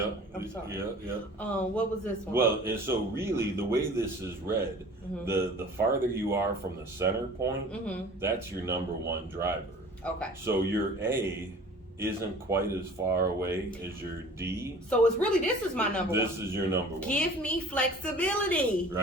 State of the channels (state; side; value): normal; both; correlation 0.45